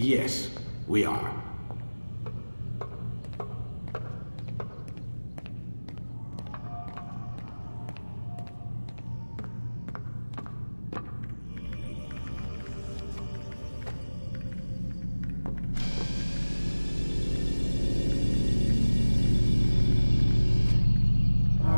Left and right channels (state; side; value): inverted; both; correlation -1.00